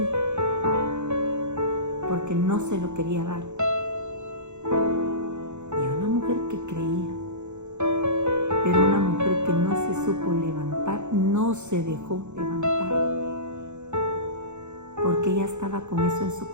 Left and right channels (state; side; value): late; left; 0.83 ms